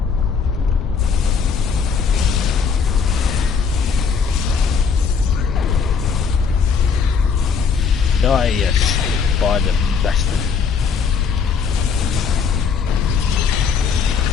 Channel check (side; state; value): right; quieter; 5.9 dB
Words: Die, yes, by the bastard.